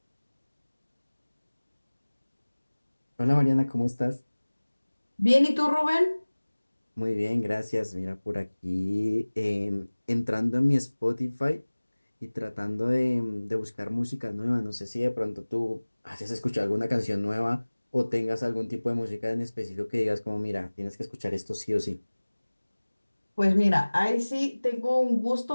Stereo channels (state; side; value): inverted; both; correlation -1.00